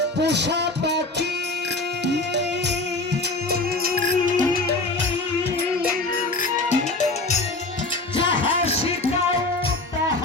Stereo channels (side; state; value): right; quieter; 3.1 dB